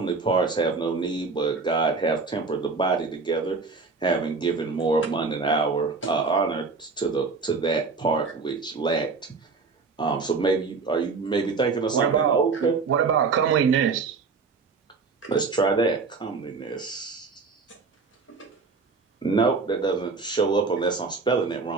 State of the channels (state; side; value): quieter; left; 4.5 dB